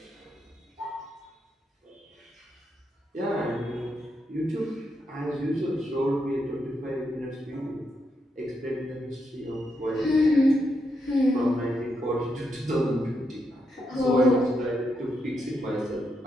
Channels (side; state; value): both; normal; correlation 0.82